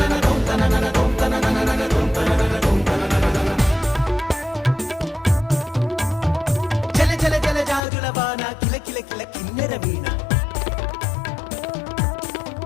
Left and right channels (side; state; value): right; drops out; at 7.8 s